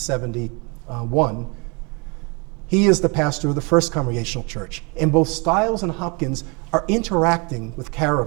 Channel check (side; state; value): left; quieter; 30.9 dB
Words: He is the pastor of the First Congregational Church. And both Stiles and Hopkins are interacting with